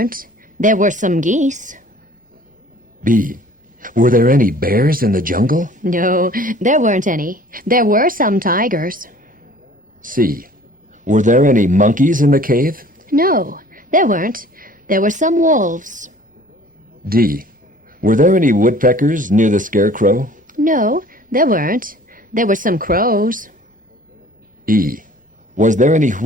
There were some geese. B. Were there any bears in the jungle? No, there weren't any. There were some tigers. C. Were there any monkeys in the cave? No, there weren't. There were some wolves. D. Were there any woodpeckers near the scarecrow? No, there weren't. There were some crows. E. Was there any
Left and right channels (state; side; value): normal; both; correlation 0.50